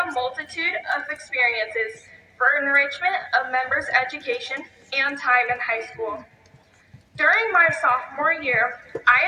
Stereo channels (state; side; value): identical; both; correlation 1.00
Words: a multitude of experiences for enrichment of members' education and time in high school. During my sophomore year,